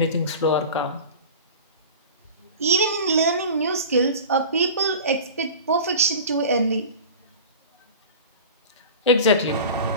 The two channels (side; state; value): both; inverted; correlation -0.36